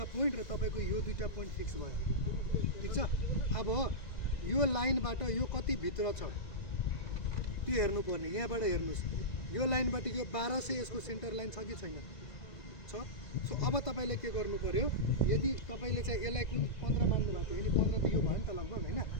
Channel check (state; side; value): late; right; 2.0 ms